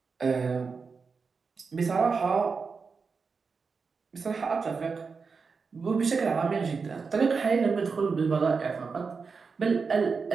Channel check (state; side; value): quieter; left; 5.0 dB